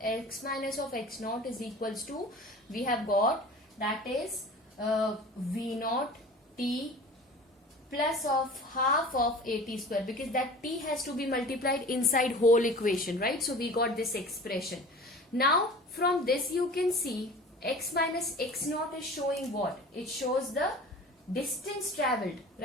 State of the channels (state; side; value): normal; both; correlation 0.40